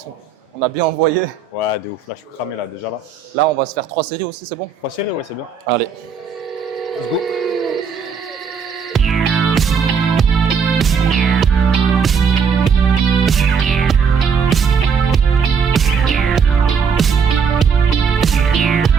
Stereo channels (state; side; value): quieter; left; 6.2 dB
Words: On a bien envoyé. Ouais, de ouf. Là, je suis cramé là, déjà là. Là, on va se faire 3 séries aussi, c'est bon? 3 séries, ouais, c'est bien. Allez. Let's go.